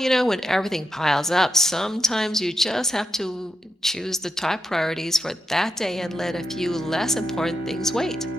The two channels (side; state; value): both; normal; correlation 0.86